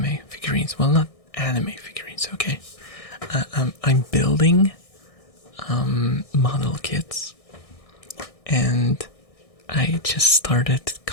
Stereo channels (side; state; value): right; late; 1.6 ms